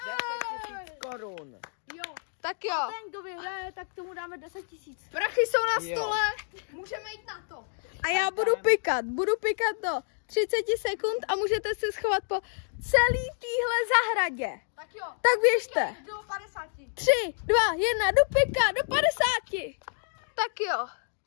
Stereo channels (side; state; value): right; silent; 59 dB below the other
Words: korun. Jo. Tak jo. A ten, kdo vyhraje, tak tomu dáme 10 000. Prachy jsou na stole. Můžeme jít na to. A já budu pikat do 30 sekund a můžete se schovat po celý téhle zahradě. Tak jo. Tak běžte. Do 50. 3, 2, 1, do pika, do 50. Tak jo,